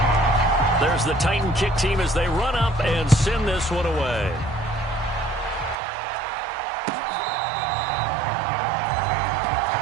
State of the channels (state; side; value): drops out; left; at 5.8 s